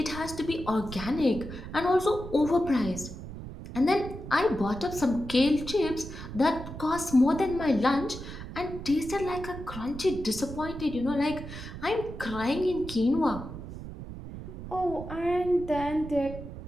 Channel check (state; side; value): noise; right; rumble, 10 dB below the sound